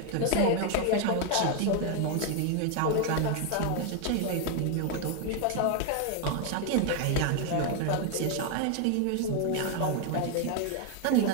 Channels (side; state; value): both; different; correlation 0.01